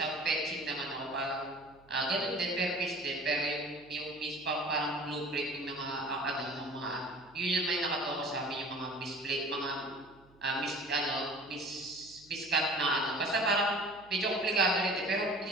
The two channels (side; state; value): right; noise; hum, 28 dB below the sound